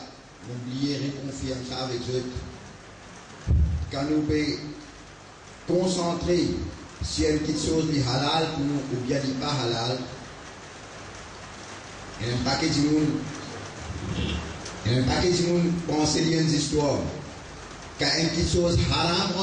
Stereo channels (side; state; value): both; identical; correlation 1.00